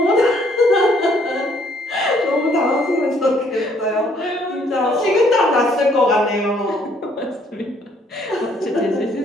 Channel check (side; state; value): both; normal; correlation 0.65